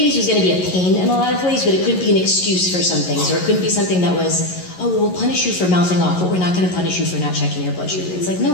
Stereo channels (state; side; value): late; right; 11 ms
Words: be a pain in a lot of ways, but it couldn't be an excuse for some things, or it couldn't be something that was, oh, well, we'll punish you for mouthing off, but we're not going to punish you for not checking your blood sugar. It's like, no,